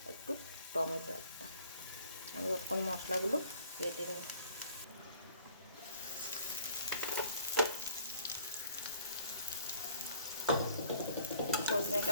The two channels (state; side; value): inverted; both; correlation -0.58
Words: একটু টমেটো একটা। আমি তখন মশলাগুলো বেটে নিই।